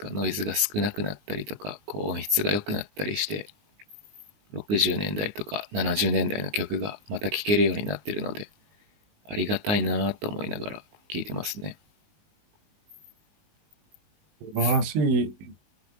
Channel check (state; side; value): late; left; 19 ms